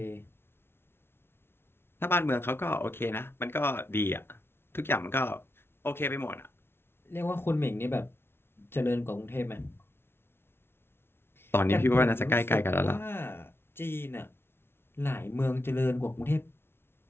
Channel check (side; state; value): right; late; 0.12 ms